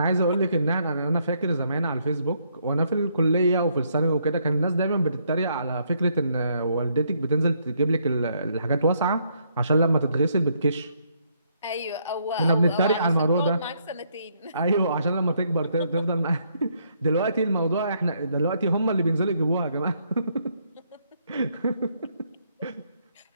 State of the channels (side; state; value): both; inverted; correlation -0.72